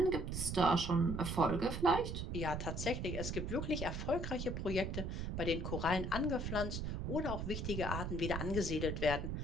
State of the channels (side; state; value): right; noise; rumble, 3 dB below the sound